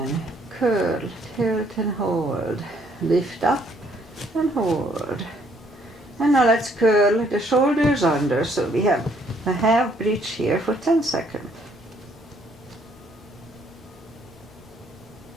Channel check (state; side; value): normal; both; correlation 0.66